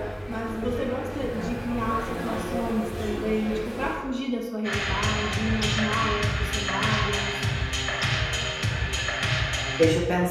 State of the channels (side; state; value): both; identical; correlation 1.00